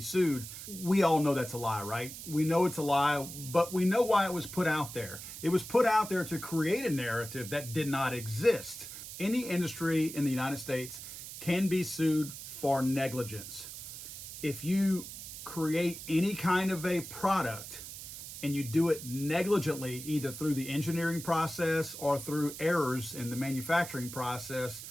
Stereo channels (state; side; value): noise; right; hiss, 11 dB below the sound